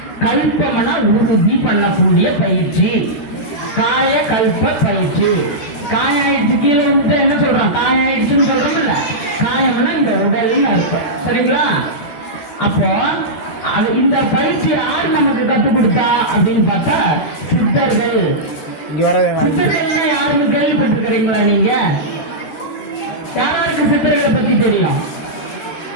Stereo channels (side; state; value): right; late; 12 ms